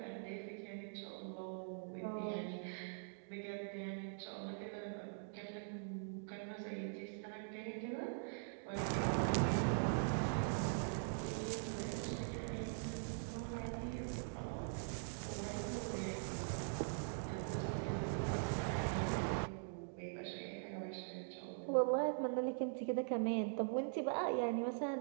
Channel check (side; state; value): left; silent; digital silence